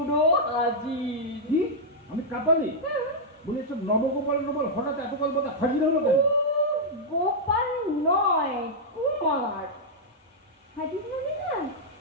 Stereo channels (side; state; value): both; normal; correlation -0.06